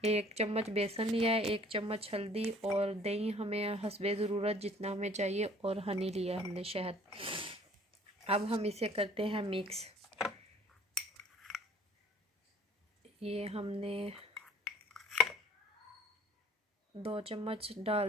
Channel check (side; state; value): both; normal; correlation 0.54